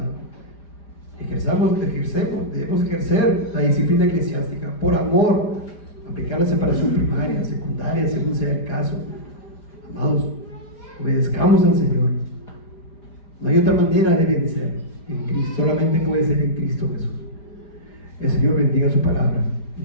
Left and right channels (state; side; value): late; right; 5.0 ms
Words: debemos ejercer la disciplina eclesiástica por amor, aplicar la separación primaria, secundaria, según sea el caso. Amados, obedezcamos al Señor. No hay otra manera de vencer en Cristo, solamente puede ser en Cristo Jesús. El Señor bendiga su palabra.